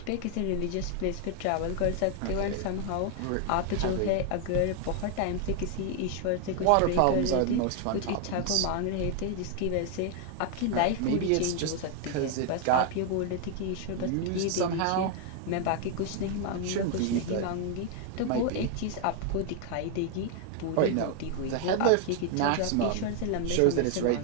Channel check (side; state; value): both; different; correlation 0.00